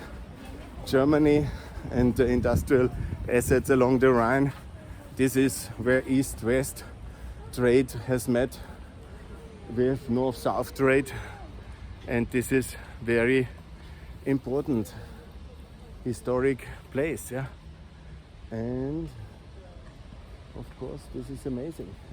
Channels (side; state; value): both; identical; correlation 1.00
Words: Germany and the industrial assets along the Rhine. This is where East-West trade has met with North-South trade, and this is very important historic place, yeah. And of course this is amazing.